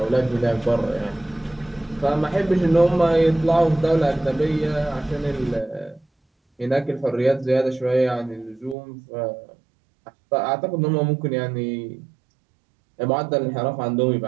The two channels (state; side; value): drops out; left; at 8.8 s